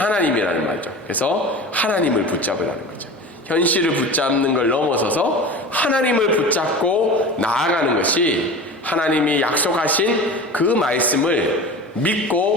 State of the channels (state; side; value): normal; both; correlation 0.34